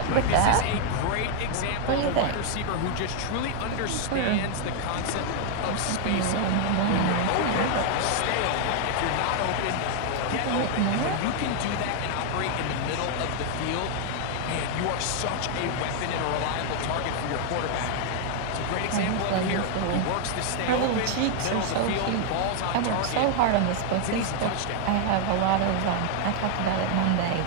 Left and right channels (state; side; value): different; both; correlation 0.00